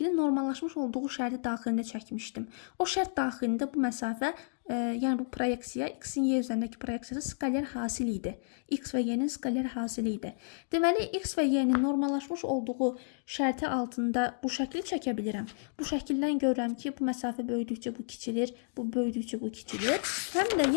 normallaşmış olduğu şərti daxilində çəkmişdim. O şərt daxilində bu məsafə, yəni bu proyeksiya, x-in y üzərindəki proyeksiyası skaler hasil idi. X və y-nin skaler hasili idi. Deməli, x və y-nin normallaşmış olduğu şərti altında bu şəkli çəkə bilirəm. Bu şəkildən görürəm ki, bu məsafə böyüdükcə bu kiçilir, bu böyüdükcə bu kiçilir. Həm də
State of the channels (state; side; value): silent; right; digital silence